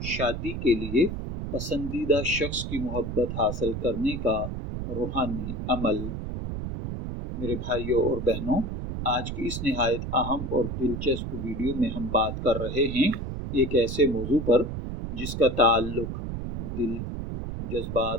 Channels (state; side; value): noise; right; rumble, 5 dB below the sound